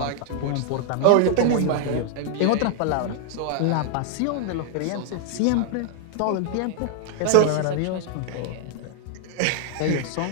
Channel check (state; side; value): different; both; correlation 0.00